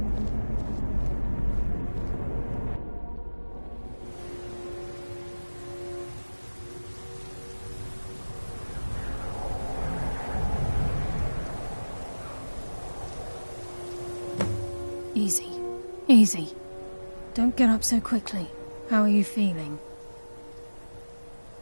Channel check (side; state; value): both; inverted; correlation -1.00